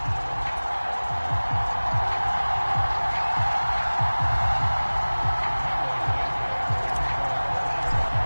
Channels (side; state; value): both; inverted; correlation -1.00